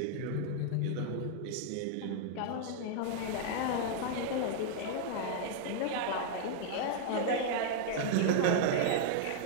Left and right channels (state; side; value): different; both; correlation -0.01